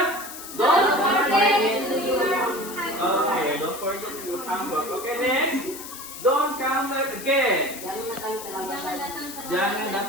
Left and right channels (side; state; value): left; noise; hiss, 11 dB below the sound